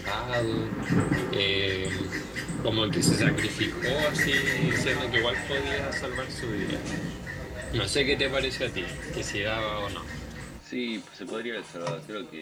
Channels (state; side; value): identical; both; correlation 1.00